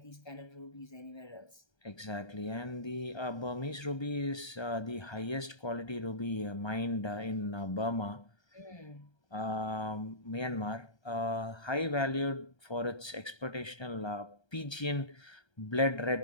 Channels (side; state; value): right; late; 1.3 ms